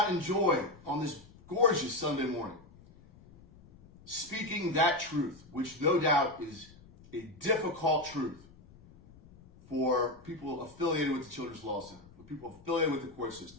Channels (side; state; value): left; noise; rumble, 23 dB below the sound